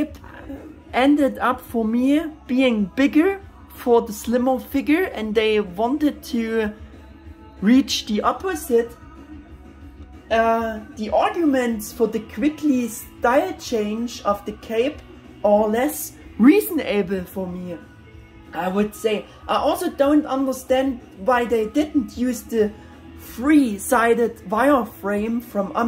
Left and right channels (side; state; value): both; identical; correlation 1.00